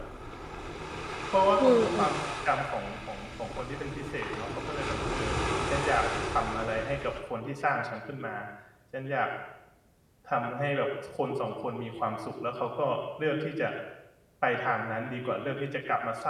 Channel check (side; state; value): both; identical; correlation 1.00